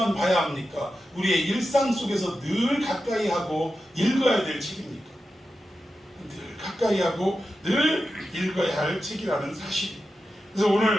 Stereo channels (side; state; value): both; normal; correlation 0.91